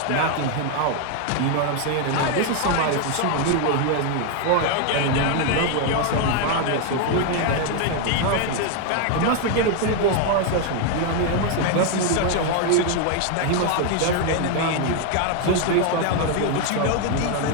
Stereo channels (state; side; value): different; both; correlation 0.01